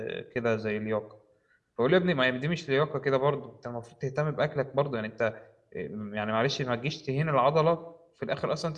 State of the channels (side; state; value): both; identical; correlation 1.00